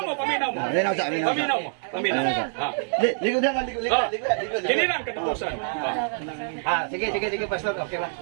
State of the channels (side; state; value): left; silent; digital silence